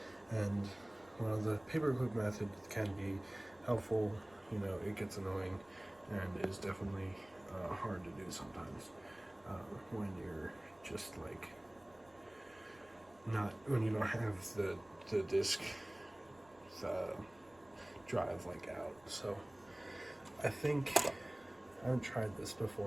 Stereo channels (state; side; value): noise; right; rumble, 28 dB below the sound